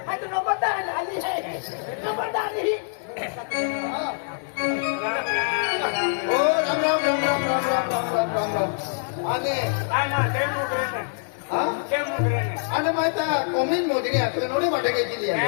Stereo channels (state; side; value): silent; right; digital silence